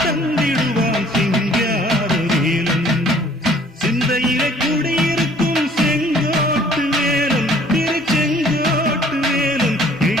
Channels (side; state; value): both; normal; correlation 0.56